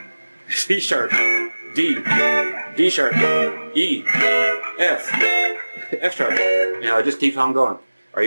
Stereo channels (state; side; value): inverted; both; correlation -1.00